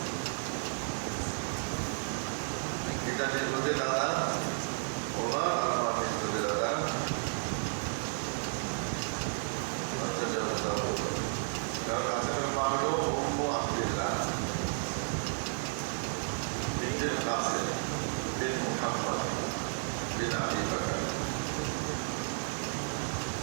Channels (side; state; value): left; silent; 56 dB below the other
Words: এটার মধ্যে দাদা ওমর আর আমার মধ্যে দাদা কারণ আসলে পারো অম্ব আব্দুল্লাহ বিন কাসিম বিন মুহাম্মদ বিন আবি বকর